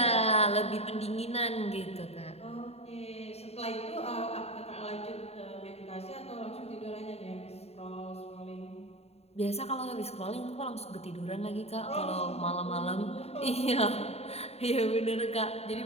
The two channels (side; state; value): right; late; 0.30 ms